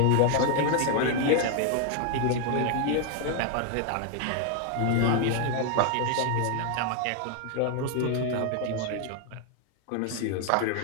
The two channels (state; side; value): different; both; correlation 0.00